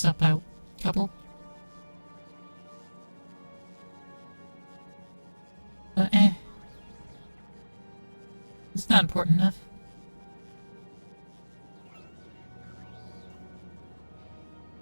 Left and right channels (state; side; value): inverted; both; correlation -1.00